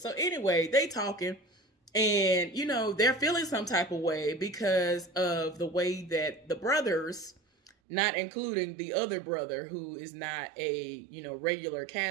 anyway, they talking, and, they're feeling some type of way because of the way that the brothers, not including the other brother who is not a, regular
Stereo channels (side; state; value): left; drops out; at 7.7 s